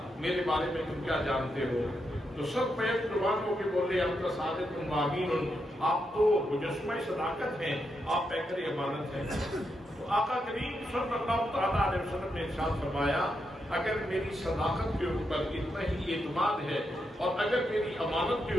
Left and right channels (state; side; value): normal; both; correlation 0.83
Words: میرے بارے میں تم کیا جانتے ہو؟ تو سب بیک زبان ہو کے بولے ہم تو صادق امین، آپ تو مجسمہ صداقت ہیں، آپ پیکر امانت ہیں. تو آقا کریم صلی اللہ تعالیٰ علیہ وسلم نے ارشاد فرمایا اگر میری صداقت کے اوپر اتنا ہی اعتماد ہے اور اگر میری امانت کے